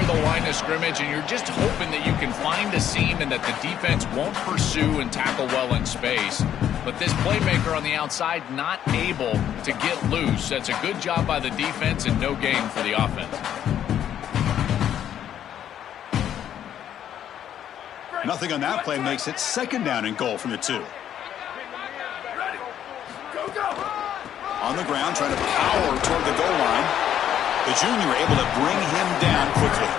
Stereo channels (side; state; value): right; quieter; 10.2 dB